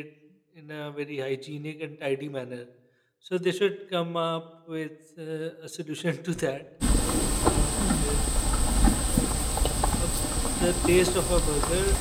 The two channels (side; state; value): both; identical; correlation 1.00